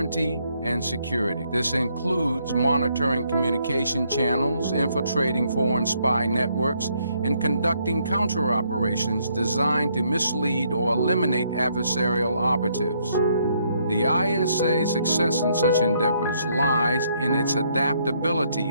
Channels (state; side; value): inverted; both; correlation -0.71